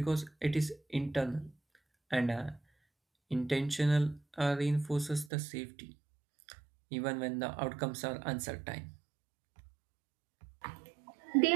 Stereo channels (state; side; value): drops out; left; at 5.3 s